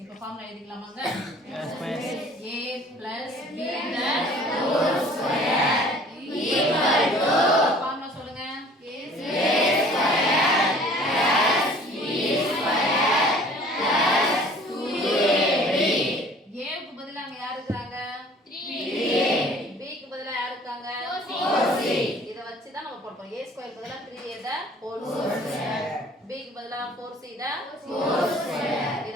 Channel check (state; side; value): normal; both; correlation 0.51